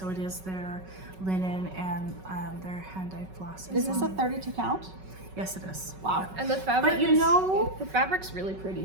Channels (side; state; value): left; late; 5.3 ms